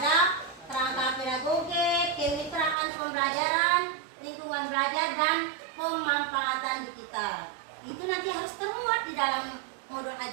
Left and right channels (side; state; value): left; drops out; at 2.8 s